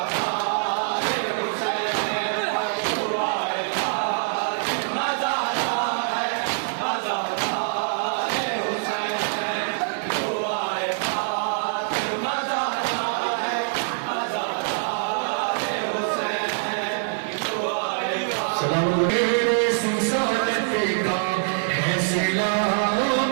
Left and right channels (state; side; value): silent; left; digital silence